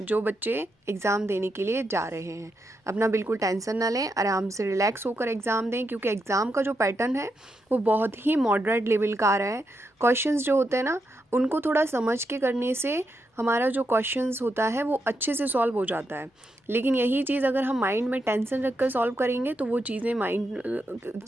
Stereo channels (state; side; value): normal; both; correlation 0.83